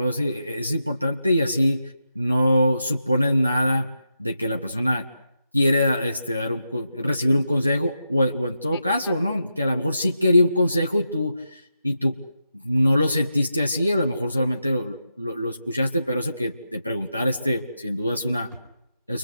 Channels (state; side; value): inverted; both; correlation -0.86